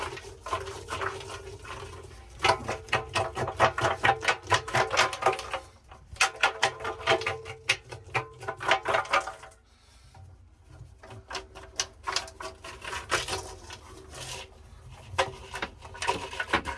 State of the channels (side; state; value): both; identical; correlation 1.00